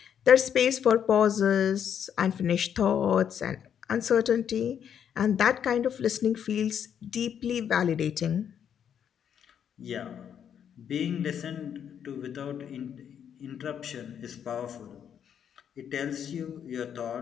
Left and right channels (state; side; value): quieter; right; 8.6 dB